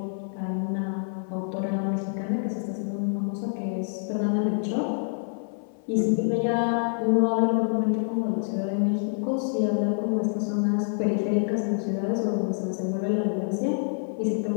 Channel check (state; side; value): silent; right; 60 dB below the other